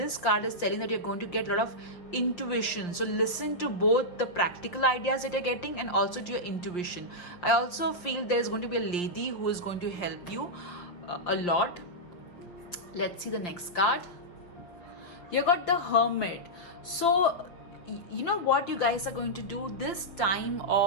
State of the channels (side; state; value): right; late; 5.7 ms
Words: card is telling that you're going to get a lot of intuition. So listen to both the practical ideas that you're getting and also to your intuition. I also feel there's going to be a lady who is going to help you a lot. Let's see the next card. You got the Hermit. So what you guys are going to do this time